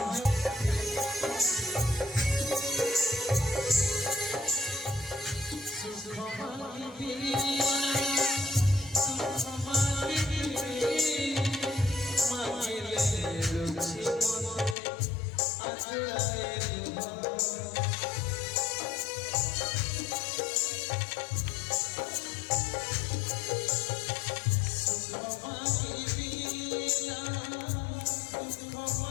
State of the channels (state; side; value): drops out; right; at 14.8 s